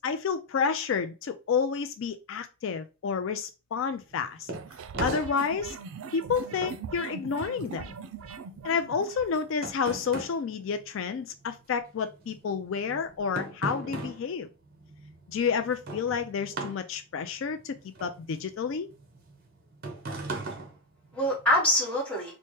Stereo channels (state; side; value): quieter; right; 3.9 dB